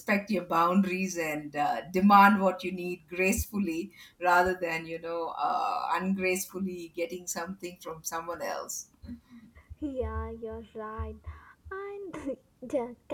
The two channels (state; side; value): identical; both; correlation 1.00